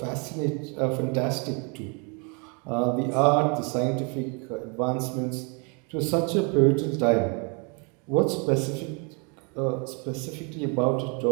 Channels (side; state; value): left; quieter; 34.7 dB